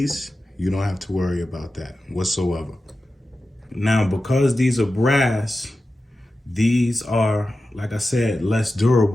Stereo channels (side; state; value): both; normal; correlation 0.93